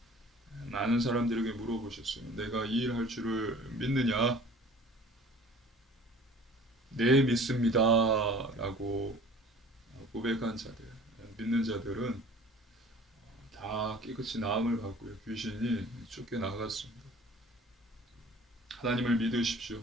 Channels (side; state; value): both; normal; correlation 0.47